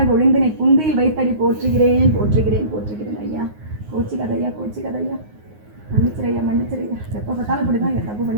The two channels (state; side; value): late; left; 9.5 ms